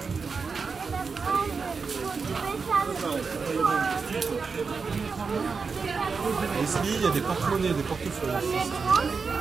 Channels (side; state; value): left; quieter; 5.0 dB